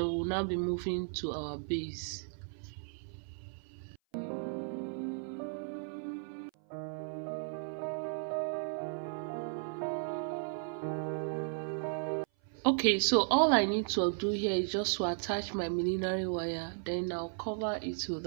we'll now be moving to our base. Okay, so all I need to do here is just to attach my millinery wire, then I'll cover it with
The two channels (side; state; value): left; silent; 54 dB below the other